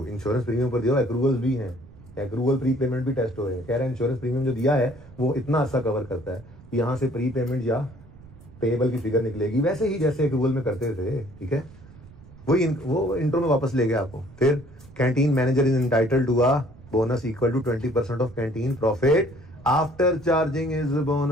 insurance premium पर दिया, एक्रूवल्स भी हैं, एक्रूवल प्री पेमेंट भी टेस्ट हो रहे हैं। कह रहे हैं इंश्योरेंस प्रीमियम जो दिया है वो इतना अच्छा कवर करता है, यहाँ से प्री पेमेंट या पेएबल की फिगर निकलेगी वैसे ही जैसे एक्रूवल में करते थे। ठीक है, वो इंट्रो में वापस ले गया आपको। फिर canteen manager is entitled to a bonus equal to 20% of canteen profit after charging is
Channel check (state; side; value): noise; right; rumble, 21 dB below the sound